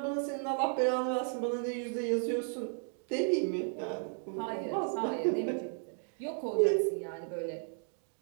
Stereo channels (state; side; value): silent; left; 55 dB below the other